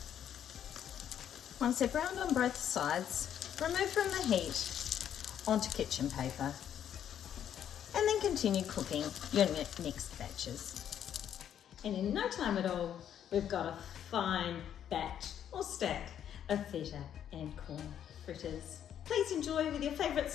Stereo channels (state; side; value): quieter; right; 9.7 dB